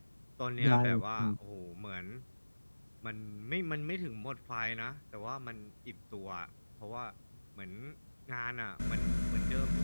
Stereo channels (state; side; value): inverted; both; correlation -1.00